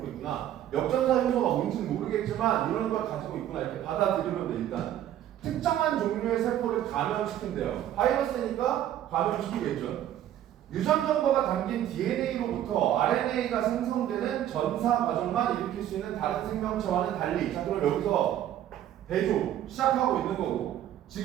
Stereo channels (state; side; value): quieter; left; 11.7 dB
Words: 있구나. 역전사 요소가 뭔지는 모르겠지만 이런 걸 가지고 있구나 이렇게 받아들이면 돼. 일단 특정한 종류의 세포를 감염시킨대요. 바이러스니까 감염시키겠죠. 유전 정보가 담긴 DNA로부터 RNA가 생성되는 전사 과정만 일으킬 수 있는 다른 생명체와는 달리. 자, 그럼 여기서 대조 시작하고 있는 거고,